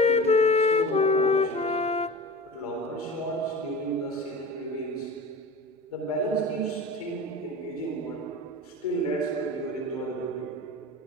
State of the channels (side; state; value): both; normal; correlation 0.34